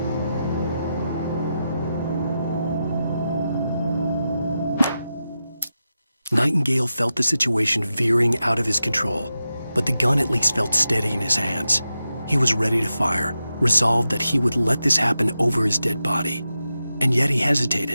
Nightingale felt the situation veering out of his control, but the gun at least felt steady in his hands. He was ready to fire, resolved that he would let this happen over his dead body. And yet he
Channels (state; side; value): inverted; both; correlation -0.89